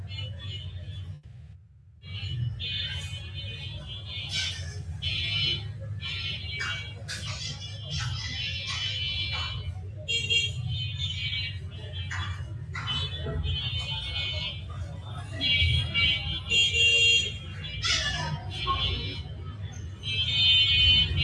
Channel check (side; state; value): both; identical; correlation 1.00